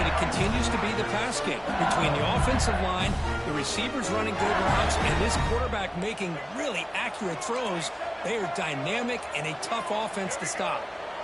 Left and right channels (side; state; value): both; identical; correlation 1.00